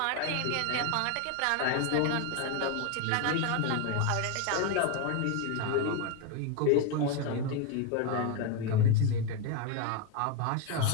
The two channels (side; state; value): both; different; correlation 0.02